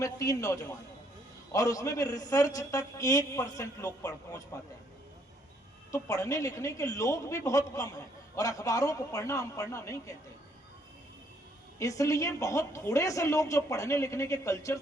3 नौजवान, और उसमें भी रिसर्च तक 1% लोग पहुंच पाते हैं। तो पढ़ने लिखने के लोग भी बहुत कम हैं, और अखबारों को पढ़ना हम पढ़ना नहीं कहते। इसलिए बहुत थोड़े से लोग जो पढ़ने लिखने के कल्चर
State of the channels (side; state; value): both; normal; correlation 0.68